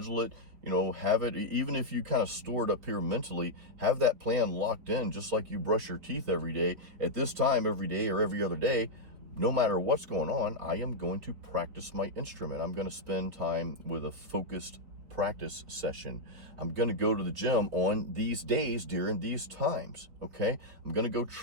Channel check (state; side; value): late; left; 4.6 ms